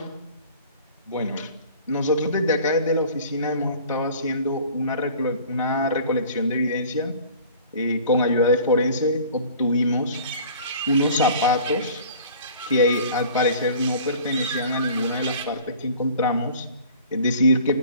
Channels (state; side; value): inverted; both; correlation -0.46